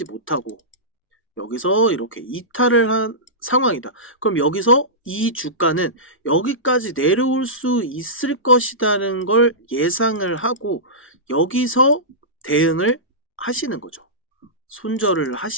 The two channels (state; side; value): normal; both; correlation -0.17